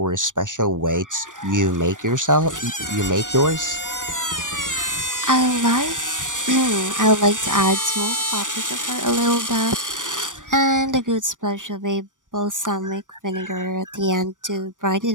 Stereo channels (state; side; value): late; left; 0.87 ms